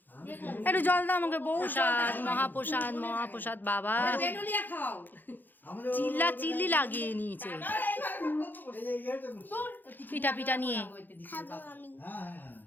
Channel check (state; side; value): late; right; 0.088 ms